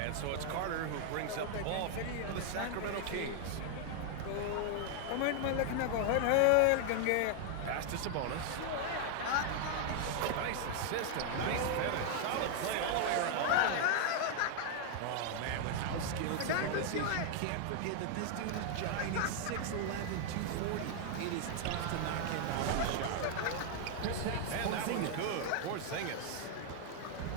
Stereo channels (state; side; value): different; both; correlation 0.00